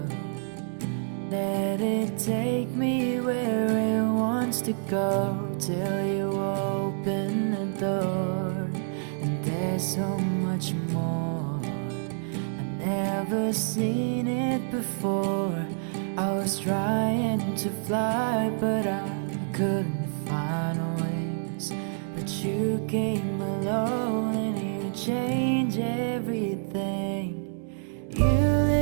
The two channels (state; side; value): silent; left; 60 dB below the other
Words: Let it take me where it wants to go, till you open the door. And there's so much more, I've never seen it before. I was trying to fly, but I couldn't find wings. But you came along and you changed everything. You